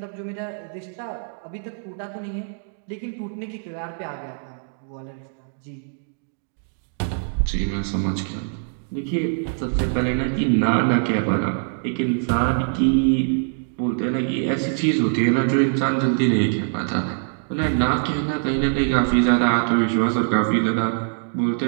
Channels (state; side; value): silent; left; 63 dB below the other